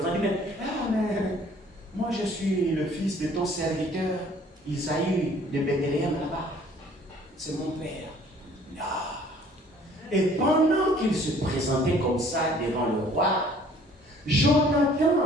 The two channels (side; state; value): both; normal; correlation 0.55